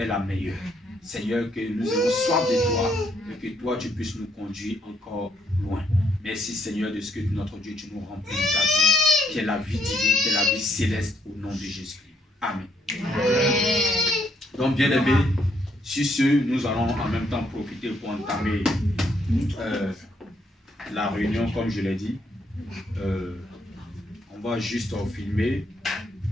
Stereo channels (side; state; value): both; normal; correlation 0.71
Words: la meilleure. Seigneur, que nous ayons soif de toi et que toi tu puisses nous conduire encore loin. Merci Seigneur de ce que notre Dieu tu nous remplis de ta vie, qui est la vie divine, qui est la vie céleste au nom de Jésus-Christ. Amen. Donc bien aimés, sur ce, nous allons en même temps profiter pour entamer la réunion comme je l'ai dit. On va juste filmer